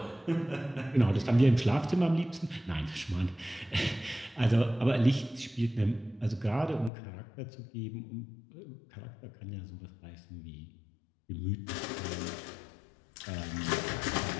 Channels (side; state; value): right; drops out; at 6.9 s